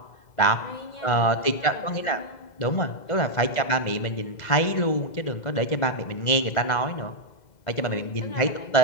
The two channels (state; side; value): late; right; 2.0 ms